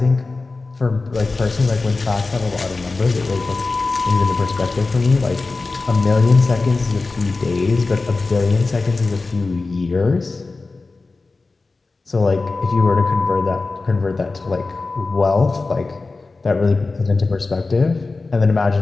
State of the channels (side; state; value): right; quieter; 3.7 dB